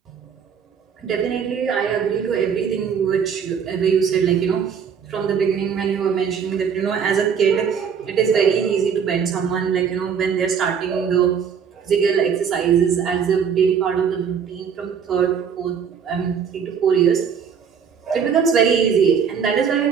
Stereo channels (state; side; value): quieter; left; 7.1 dB